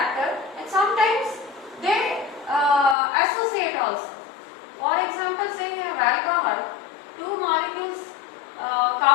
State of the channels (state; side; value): drops out; right; at 3.0 s